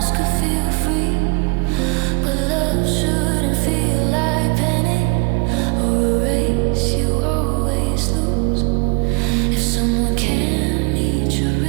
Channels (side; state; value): left; quieter; 29.7 dB